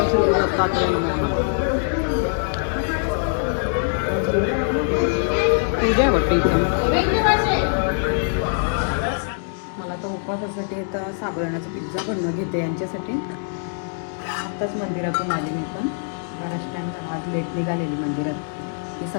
पूजा आहे वाटते इथं. मला तर उपवासासाठी तर साबुदाण्याचा पिझ्झा बनवून घेते यांच्यासाठी. आत्ताच मंदिरातून आले मी पण. बराच टाईम आज लेट निघालेली मंदिरात. मी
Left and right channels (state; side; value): silent; right; digital silence